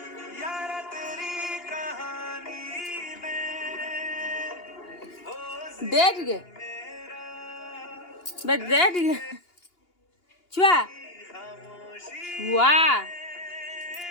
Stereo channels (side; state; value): right; late; 2.8 ms